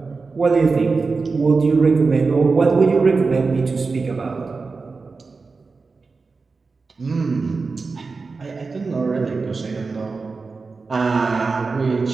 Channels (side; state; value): left; quieter; 4.3 dB